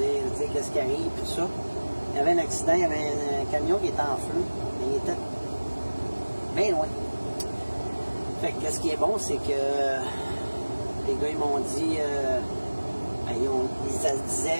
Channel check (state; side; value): inverted; both; correlation -1.00